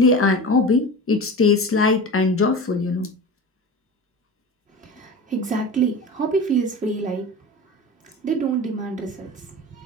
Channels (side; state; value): both; normal; correlation 0.31